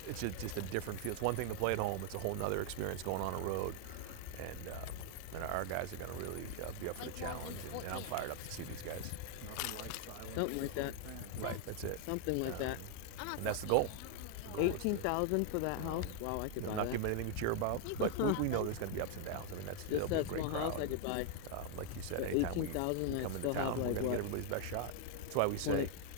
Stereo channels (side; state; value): both; different; correlation 0.00